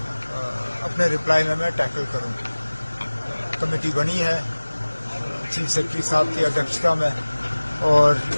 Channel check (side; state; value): both; inverted; correlation -1.00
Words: अपने रिप्लाई में मैं टैकल करूं। कमेटी बनी है चीफ सेक्रेटरी साहब की अध्यक्षता में और